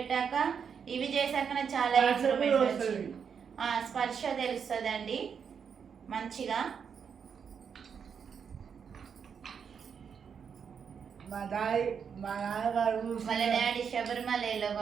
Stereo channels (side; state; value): left; quieter; 6.9 dB